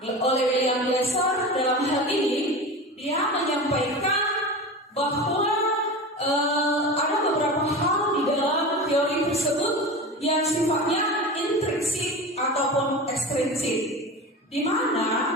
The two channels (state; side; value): normal; both; correlation 0.29